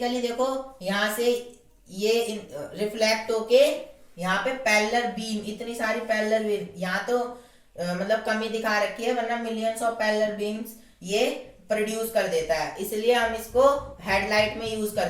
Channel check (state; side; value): identical; both; correlation 1.00